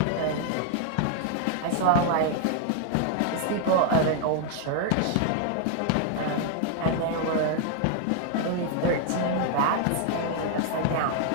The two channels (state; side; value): different; both; correlation 0.00